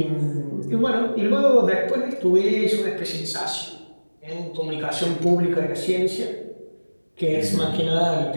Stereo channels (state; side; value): inverted; both; correlation -1.00